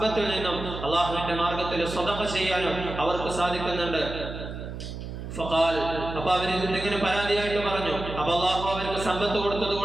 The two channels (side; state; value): right; noise; hum, 8 dB below the sound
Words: നിന്നും അള്ളാഹുവിന്റെ മാർഗത്തിൽ സ്വതഖ ചെയ്യാനും അവർക്ക് സാധിക്കുന്നുണ്ട്. ഫഖാൽ, അപ്പൊ അവർ ഇങ്ങനെ പരാതിയായിട്ട് പറഞ്ഞു, അപ്പൊ അള്ളാഹു അവർക്ക് സമ്പത്ത് കൊടുത്തത്